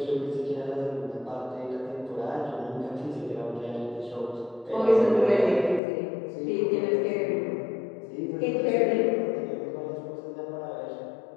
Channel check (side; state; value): right; drops out; at 5.8 s